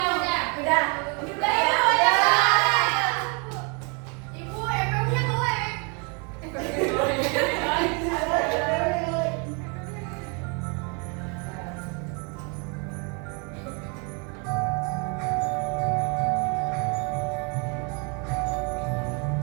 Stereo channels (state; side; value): quieter; left; 34.3 dB